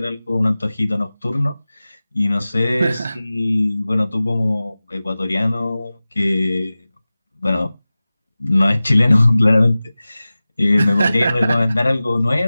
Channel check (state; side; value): inverted; both; correlation -0.97